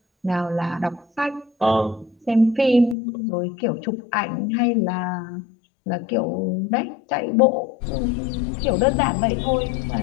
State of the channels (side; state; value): right; drops out; at 3.0 s